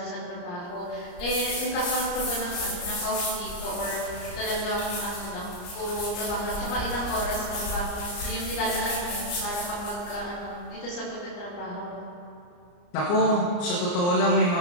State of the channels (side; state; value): right; late; 34 ms